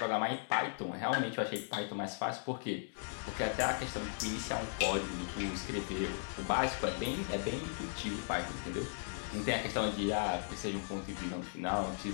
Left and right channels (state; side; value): silent; right; digital silence